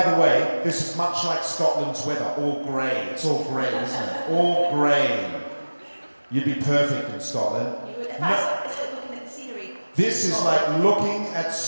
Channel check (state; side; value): inverted; both; correlation -1.00